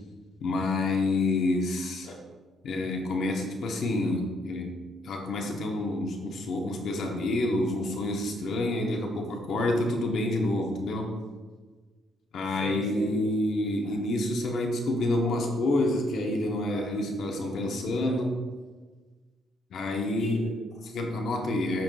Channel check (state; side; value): normal; both; correlation 0.71